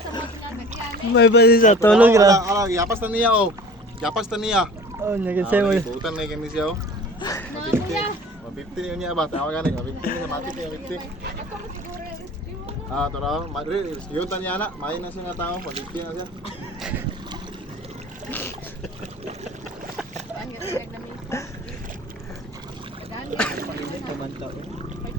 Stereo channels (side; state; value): both; normal; correlation 0.43